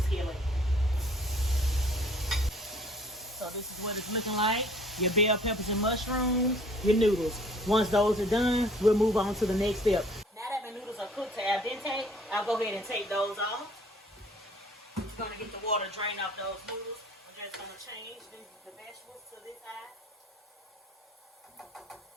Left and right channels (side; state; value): both; normal; correlation 0.56